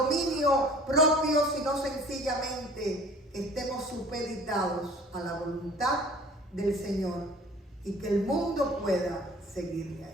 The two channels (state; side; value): normal; both; correlation 0.48